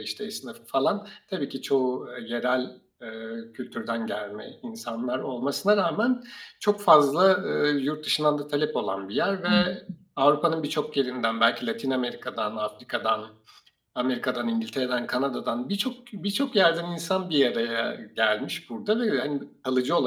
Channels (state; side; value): identical; both; correlation 1.00